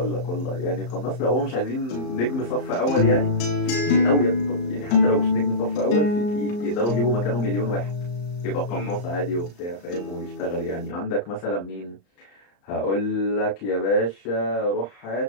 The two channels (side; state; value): right; late; 34 ms